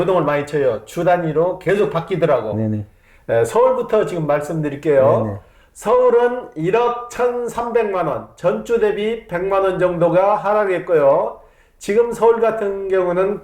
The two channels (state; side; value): identical; both; correlation 1.00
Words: 많이 쳐요. 주 단위로 계속 바뀌더라고. 네네. 예, 서울부터 지금 말씀드릴게요. 네네. 서울은 1억 1,300만 원, 전주 대비 100만 원 정도가 하락했고요. 지금 서울 같은 경우는